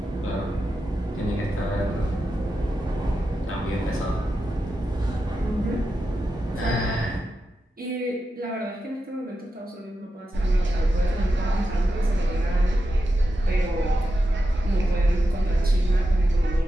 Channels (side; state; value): both; normal; correlation 0.89